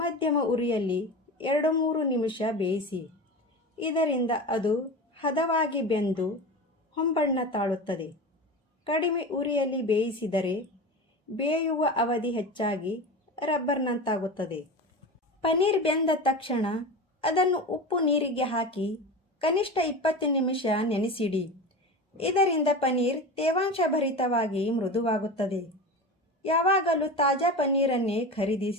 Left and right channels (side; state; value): both; normal; correlation 0.27